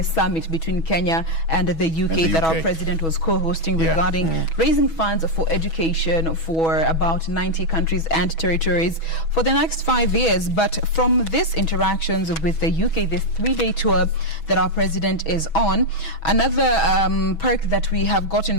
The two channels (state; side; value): late; right; 6.2 ms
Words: summit between Kenya and the UK that our president was co-hosting regarding raising funds for education for about 90 countries and territories for the next 5 years. But from these interactions with the UK, this 3-day tour that our president is on, another perk that we have gotten